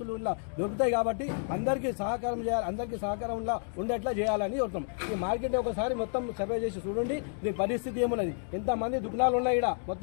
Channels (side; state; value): right; silent; digital silence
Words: దొరుకుతాయి కాబట్టి అందరికీ సహకారం చేయాలి, అందరికీ సహకారంలో ఉండేట్లా చేయాలని కోరుతాం. ఈ మార్కెట్ని ఒకసారి మొత్తం సర్వే చేసి చూడండి, దీని పరిస్థితి ఏమున్నది. ఎంతమంది దుకాణాలు ఉన్నాయి. ఇక్కడ